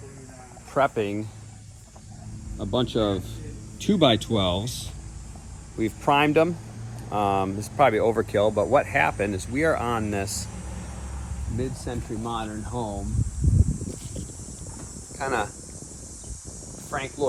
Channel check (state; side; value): identical; both; correlation 1.00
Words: prepping a bunch of 2x12s. We've primed them. This is probably overkill, but what happened is we are on this mid-century modern home, kind of Frank